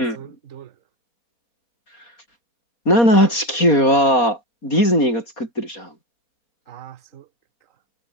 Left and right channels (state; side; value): late; right; 4.2 ms